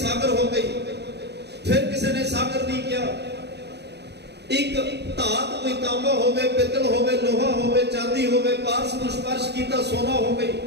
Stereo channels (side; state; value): left; late; 0.49 ms